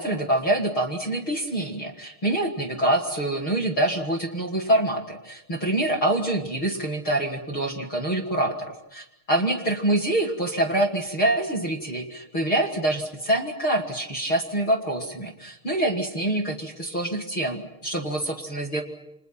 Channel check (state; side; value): late; right; 6.5 ms